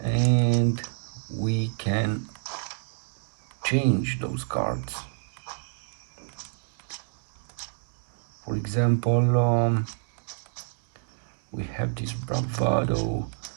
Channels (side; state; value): left; silent; digital silence